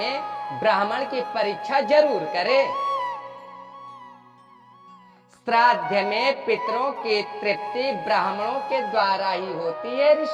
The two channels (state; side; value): identical; both; correlation 1.00